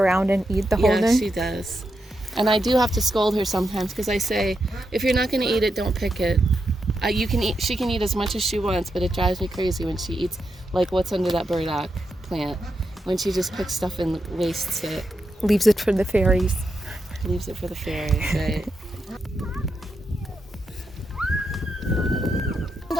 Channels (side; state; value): both; normal; correlation 0.85